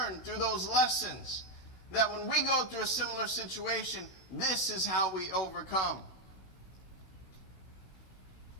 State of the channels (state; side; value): late; right; 16 ms